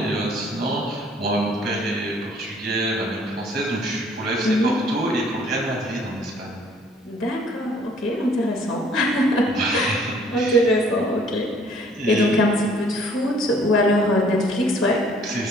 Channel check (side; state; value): both; normal; correlation 0.58